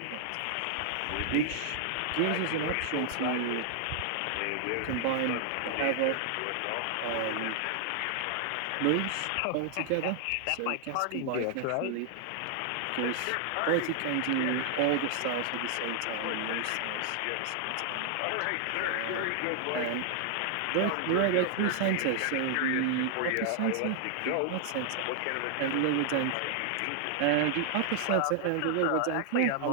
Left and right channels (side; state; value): both; different; correlation 0.00